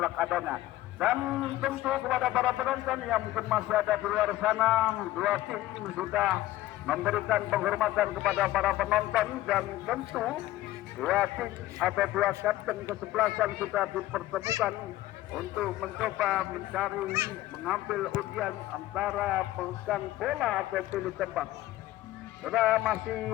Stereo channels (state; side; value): quieter; right; 15.7 dB